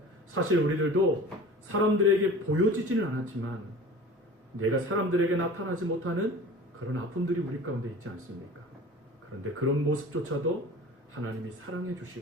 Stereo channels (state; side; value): normal; both; correlation 0.40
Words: 사실 우리들도 사람들에게 보여지지는 않았지만 내가 사람들에게 나타나지 못하는 그런 아픔들이 우리 가운데 있지 않습니까? 그런데 그런 모습조차도 하나님이 사랑해